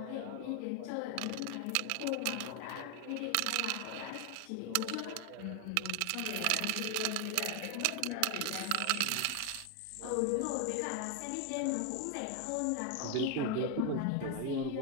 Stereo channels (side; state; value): both; different; correlation 0.01